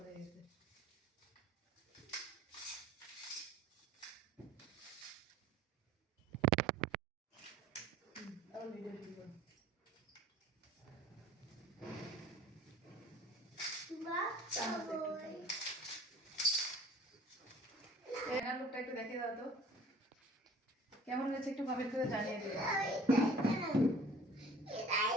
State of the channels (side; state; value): both; normal; correlation 0.48